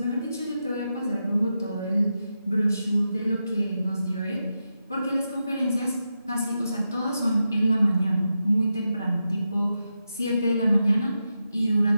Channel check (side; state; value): both; inverted; correlation -0.88